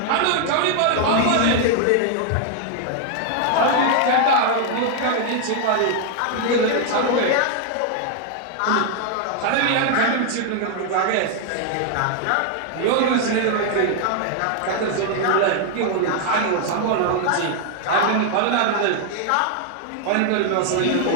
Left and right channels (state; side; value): different; both; correlation 0.00